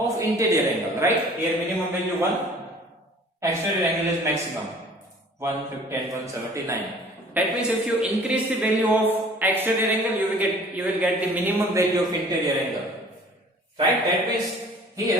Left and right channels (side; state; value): both; normal; correlation 0.50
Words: interior angle, right? Here minimum value 1, exterior angle is maximum 150 and 179. That means if you increase the value of exterior angle, you will get the minimum value of interior angle, right? That means